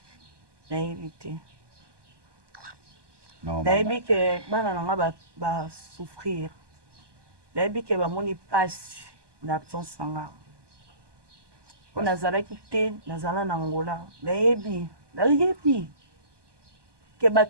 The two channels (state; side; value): late; left; 1.2 ms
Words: na éviter. Nayebi ke bana nanga ba souffrir. Nayebi ke ba moni passe d'absence nanga. On nazalaki te nazala na Angola nayebi ke